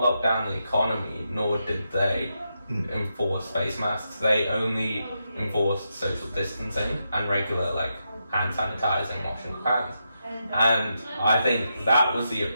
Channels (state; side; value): inverted; both; correlation -0.85